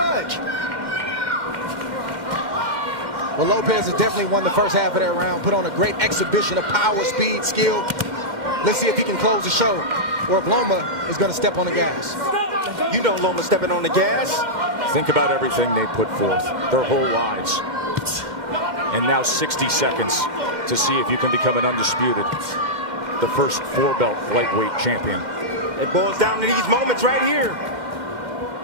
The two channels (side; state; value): left; late; 2.1 ms